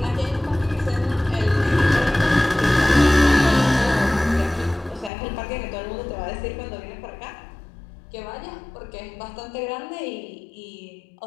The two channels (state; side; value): drops out; right; at 5.1 s